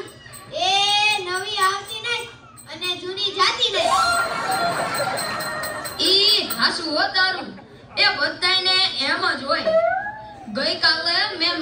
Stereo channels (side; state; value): both; identical; correlation 1.00